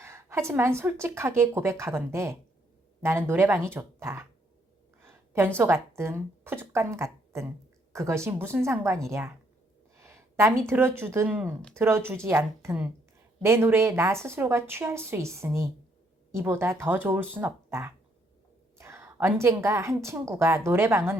하지만 솔직하게 고백하건대 나는 노래방이 좋다. 변소 같든 푸주간 같든 그것이 무슨 상관이랴. 남이 들어주든 들어주지 않든 내 노래에 나 스스로가 취할 수 있으니 이보다 더 좋을 순 없다. 언젠가 한 친구가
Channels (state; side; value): normal; both; correlation 0.70